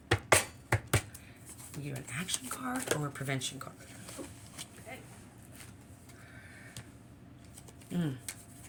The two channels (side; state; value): both; identical; correlation 1.00